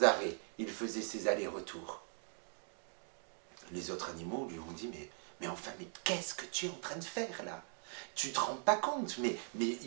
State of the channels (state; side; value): silent; left; 51 dB below the other